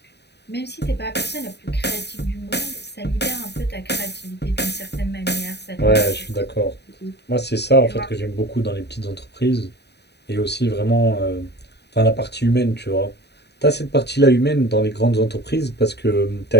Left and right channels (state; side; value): late; right; 0.49 ms